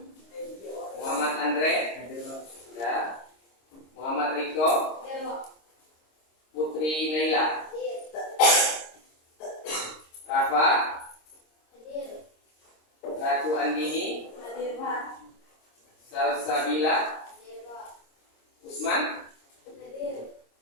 Muhammad Andre, ya, Muhammad Riko, Putri Naila, Rafa, Ratu Andini, Salsabila, Usman,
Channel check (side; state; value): right; late; 26 ms